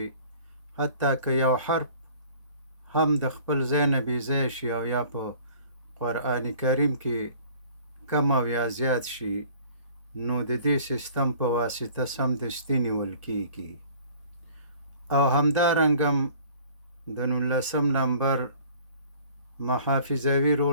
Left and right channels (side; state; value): both; inverted; correlation -0.50